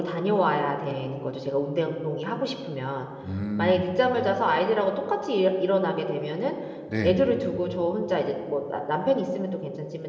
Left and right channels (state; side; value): identical; both; correlation 1.00